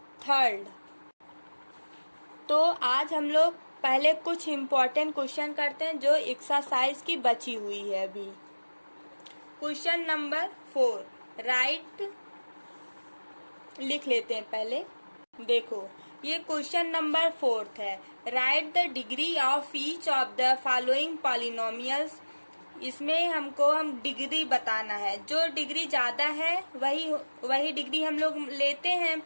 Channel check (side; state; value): both; inverted; correlation -1.00